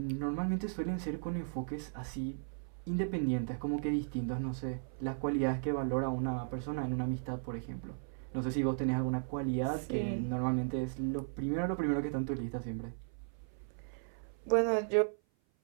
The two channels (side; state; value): left; silent; 54 dB below the other